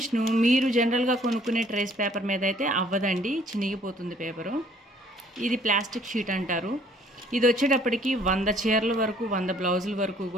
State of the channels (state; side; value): normal; both; correlation 0.60